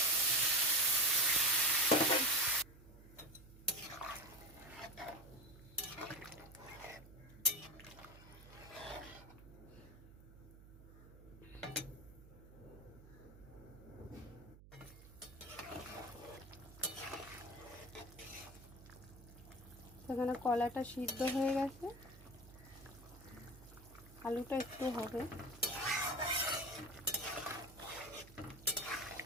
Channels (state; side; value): noise; right; hum, 19 dB below the sound